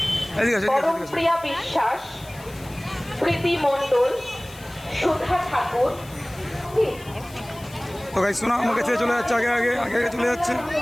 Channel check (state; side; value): noise; left; hiss, 21 dB below the sound